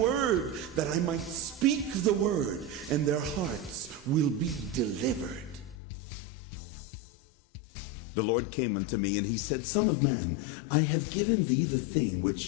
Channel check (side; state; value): right; drops out; at 5.8 s